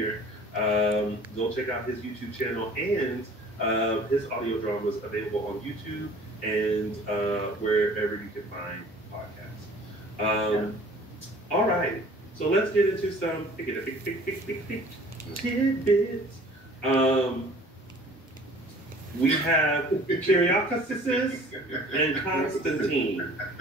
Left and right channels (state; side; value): normal; both; correlation 0.50